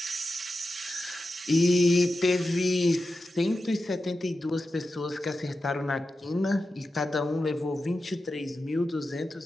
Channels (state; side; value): normal; both; correlation 0.91